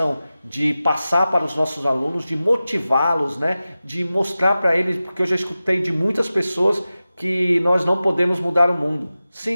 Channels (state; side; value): inverted; both; correlation -0.95